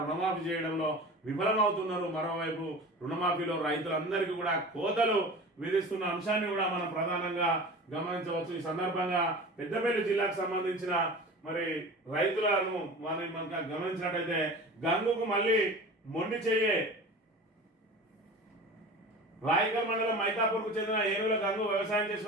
రుణమాఫీ చేయడంలో విఫలమవుతున్నారు. మరోవైపు రుణమాఫీలో రైతులందరికీ కూడా కోతలు విధిస్తున్న అంశాన్ని కూడా మనం ప్రధానంగా గమనించవచ్చు. ఈ సందర్భంగా పెద్దపల్లి జిల్లాకు సంబంధించిన మరి రైతులను మనం గమనించినట్టయితే గంగుకు మళ్ళీ మొండి చెయ్యే. రాయకల్ మండలం మైతాపూర్కు చెందిన ఏనుగుల గంగు వ్యవసాయం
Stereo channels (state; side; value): normal; both; correlation 0.36